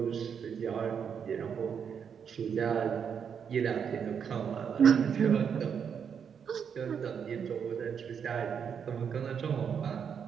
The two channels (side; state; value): left; quieter; 7.3 dB